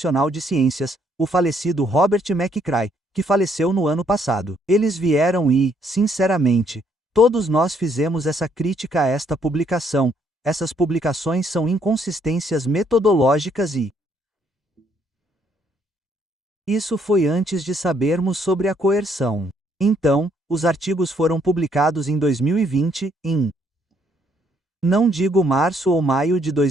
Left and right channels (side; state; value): both; normal; correlation 0.69